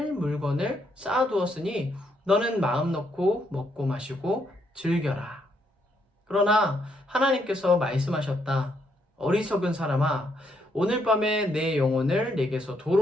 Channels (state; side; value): normal; both; correlation 0.75